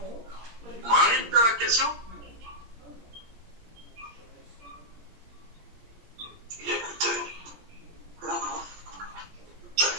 Marie, tu as la question?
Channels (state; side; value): late; left; 17 ms